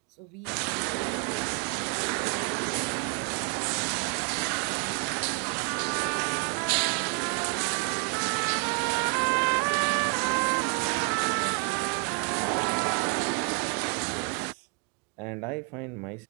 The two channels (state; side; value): quieter; left; 34.8 dB